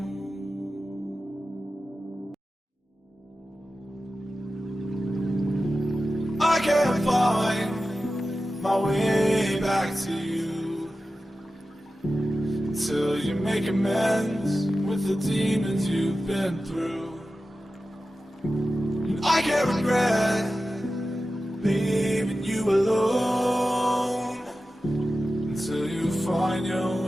I can't find my way back to you until you make amends with the demons you've been through. And I can't regret leaving you alone until you find your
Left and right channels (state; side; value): normal; both; correlation 0.94